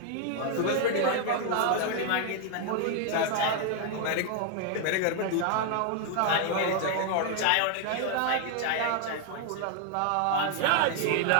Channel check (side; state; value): both; different; correlation 0.00